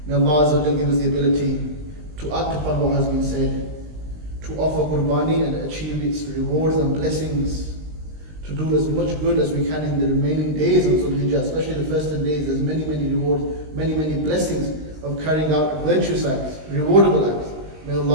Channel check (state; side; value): late; left; 20 ms